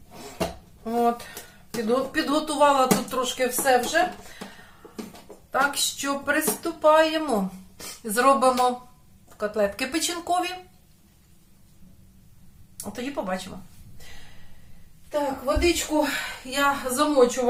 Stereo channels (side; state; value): both; identical; correlation 1.00